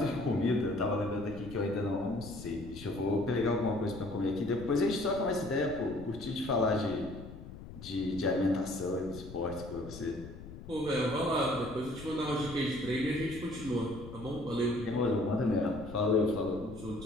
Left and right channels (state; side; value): noise; left; rumble, 13 dB below the sound